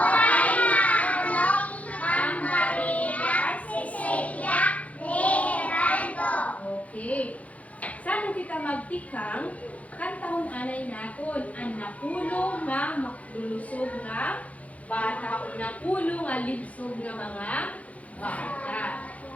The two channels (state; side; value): late; right; 0.067 ms